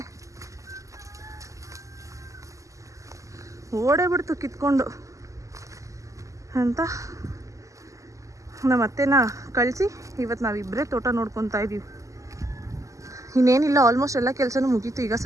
ಓಡೇ ಬಿಡ್ತು ಕಿತ್ಕೊಂಡು ಅಂತ ನಮ್ಮ ಅತ್ತೆನ ಕಳಿಸಿ ಇವತ್ತು ನಾವಿಬ್ಬರೇ ತೋಟ ನೋಡ್ಕೊತಾ ಇದ್ದೀವಿ ಇನ್ನೇನಿಲ್ಲ ಆಲ್ಮೋಸ್ಟ್ ಎಲ್ಲ ಕೆಲಸನೂ ಮುಗೀತು ಈಗ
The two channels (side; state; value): left; late; 0.16 ms